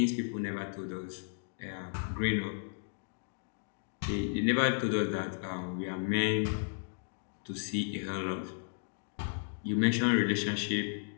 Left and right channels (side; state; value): right; silent; digital silence